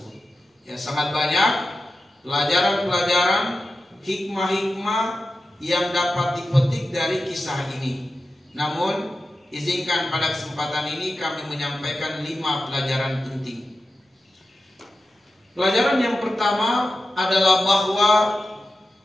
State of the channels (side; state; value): both; normal; correlation 0.93